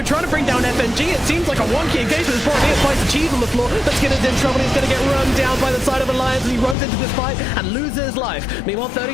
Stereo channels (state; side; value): drops out; right; at 6.8 s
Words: trying to bring down FNG. It seems like a wonky engagement. As Boromir finds the cheese on the floor, but Skinner's in trouble. He's going to get run down by the side of Alliance as he runs into this fight and loses his life. Meanwhile,